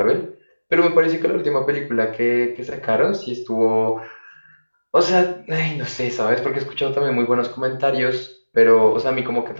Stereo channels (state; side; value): inverted; both; correlation -1.00